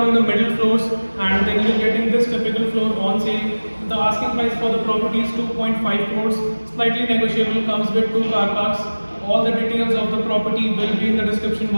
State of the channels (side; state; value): both; inverted; correlation -1.00